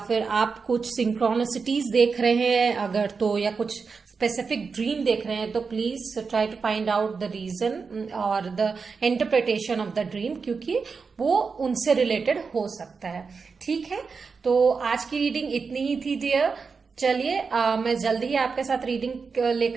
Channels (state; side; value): quieter; left; 5.1 dB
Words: फिर आप कुछ सिंक्रोनिसिटीज देख रहे हैं अगर तो, या कुछ स्पेसिफिक ड्रीम देख रहे हैं तो please try to find out the reason और the interpretation of the dream, क्योंकि वो उनसे रिलेटेड हो सकता है। ठीक है, तो आज की रीडिंग इतनी ही थी डियर। चलिए मैं जल्दी ही आपके साथ